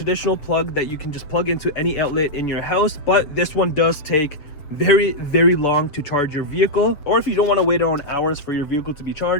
plug that you can just plug into any outlet in your house, but this one does take very long to charge your vehicle. Or if you don't want to wait on hours for your vehicle to be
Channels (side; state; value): right; late; 7.1 ms